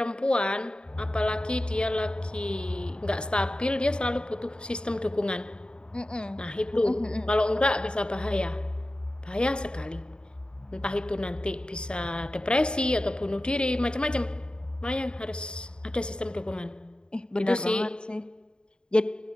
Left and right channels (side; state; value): right; late; 0.050 ms